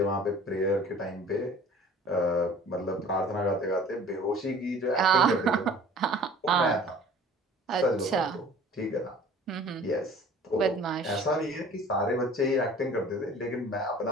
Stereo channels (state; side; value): normal; both; correlation 0.47